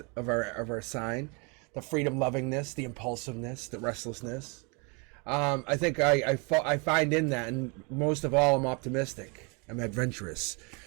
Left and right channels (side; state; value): left; quieter; 32.1 dB